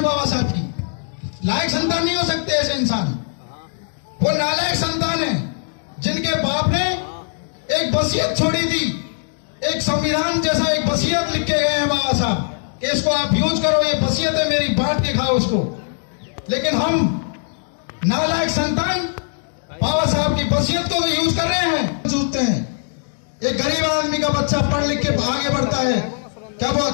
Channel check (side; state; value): right; silent; digital silence